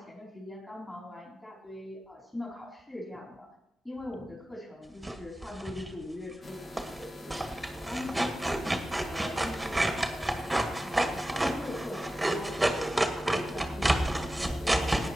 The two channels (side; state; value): both; normal; correlation 0.94